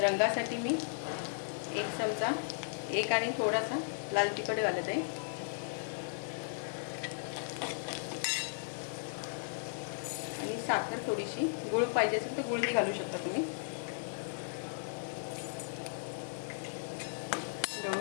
मी 1 चमचा आणि थोडासा लाल तिखट घालत आहे. आणि साखर थोडीशी, गूळ पाहिजे असेल तर गूळही घालू शकता तुम्ही.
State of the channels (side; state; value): right; silent; 54 dB below the other